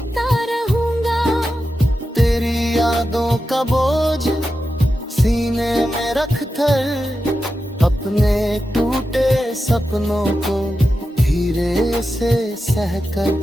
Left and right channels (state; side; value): normal; both; correlation 0.91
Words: रहूँगा। तेरी यादों का बोझ सीने में रख कर, अपने टूटे सपनों को धीरे से सहकर।